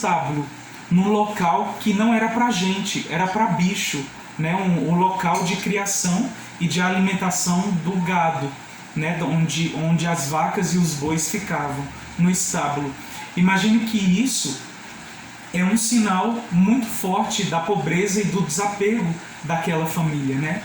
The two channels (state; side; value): identical; both; correlation 1.00